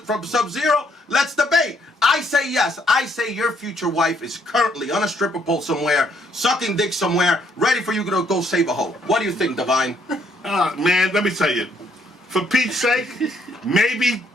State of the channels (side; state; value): both; normal; correlation 0.69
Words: Sub-Zero. Let's debate. I say yes. I say your future wife is currently on a stripper pole somewhere, sucking dick somewhere, ready for you to go save a hoe. What do you think, Divine? Man, let me tell you. For Pete's sake, maybe